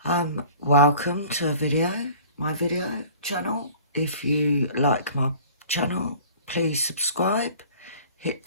Welcome to my video channel. If you like my channel, please subscribe, hit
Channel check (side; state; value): both; inverted; correlation -0.46